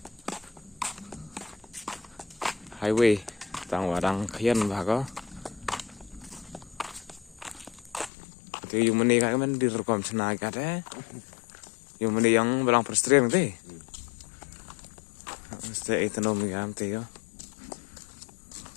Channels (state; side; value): drops out; right; at 8.1 s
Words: highway tang wadang khian bago. Itu yung mani kan direkam senang kat yung mani yang belang perstrem tu. Mesti ekonomi am tu yo.